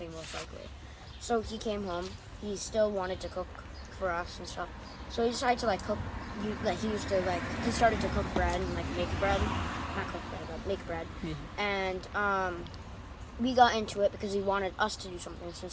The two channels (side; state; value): both; identical; correlation 1.00